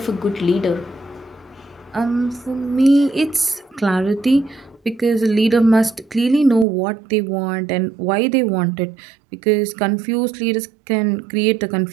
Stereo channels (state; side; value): drops out; left; at 6.7 s